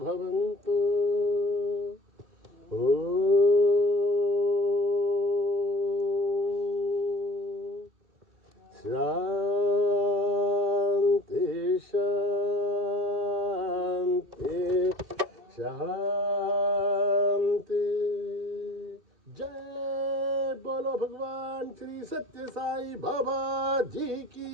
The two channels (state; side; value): late; left; 2.6 ms